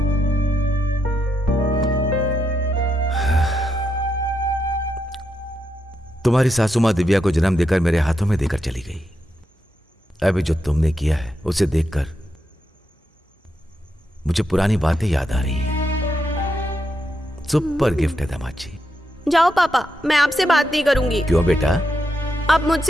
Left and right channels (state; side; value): normal; both; correlation 0.83